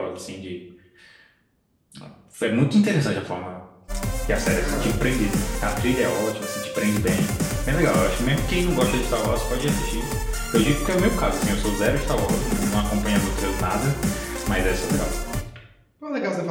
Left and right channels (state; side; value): identical; both; correlation 1.00